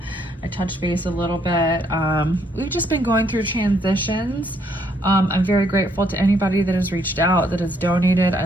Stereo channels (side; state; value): both; normal; correlation 0.70